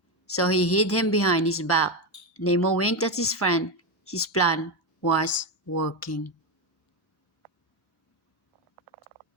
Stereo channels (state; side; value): normal; both; correlation 0.11